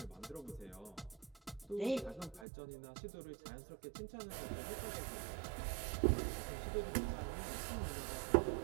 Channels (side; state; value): left; drops out; at 2.5 s